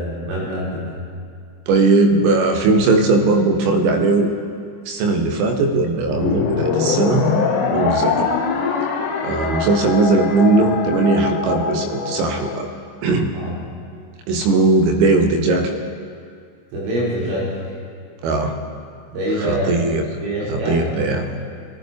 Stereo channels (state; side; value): late; left; 25 ms